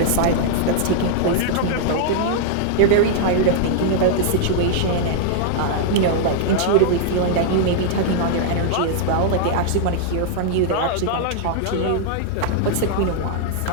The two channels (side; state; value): both; different; correlation -0.01